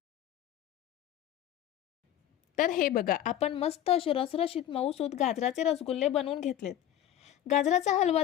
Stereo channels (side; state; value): right; quieter; 11.5 dB